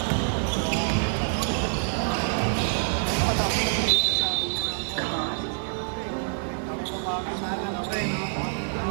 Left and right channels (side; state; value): left; silent; digital silence